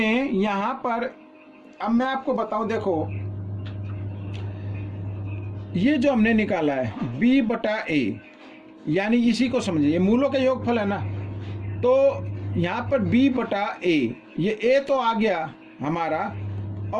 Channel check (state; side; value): identical; both; correlation 1.00